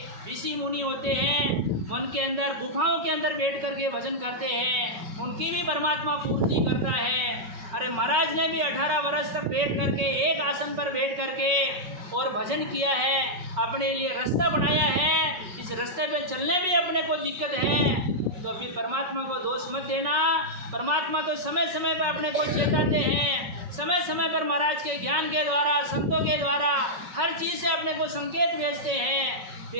ऋषि मुनि होते हैं मन के अंदर गुफाओं के अंदर बैठ करके भजन करते हैं, उनकी भी परमात्मा पूर्ति करता है। अरे महाराज ने भी 18 वर्ष तक बैठ करके एक आसन पर बैठ करके और भजन किया है, अपने लिए रास्ता बनाया है। इस रास्ते पे चलने में अपने को दिक्कत है तो अभी परमात्मा को दोष मत देना। परमात्मा तो समय समय पर अपने को चेताते हैं, समय समय पर महाराज के ज्ञान के द्वारा, संतों के द्वारा हर चीज़ से अपने को संकेत भेजते हैं।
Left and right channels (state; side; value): late; left; 5.4 ms